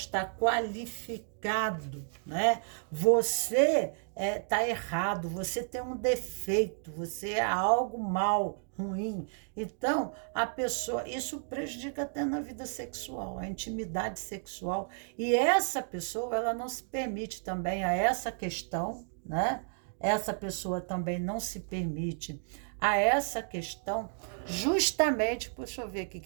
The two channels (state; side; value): silent; left; 56 dB below the other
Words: qualificado, né? Você está errado, você tem um defeito, você é algo mal, ruim. Então, a pessoa, isso prejudica até na vida sexual, a intimidade sexual. E essa pessoa, ela não se permite também a essa questão, né? Essa pessoa também não se permite a essa questão, justamente, deixa eu ver o